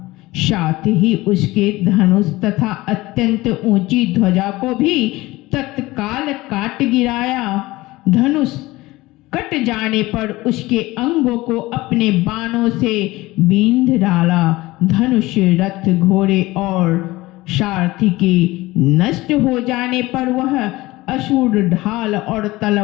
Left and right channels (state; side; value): quieter; right; 19.5 dB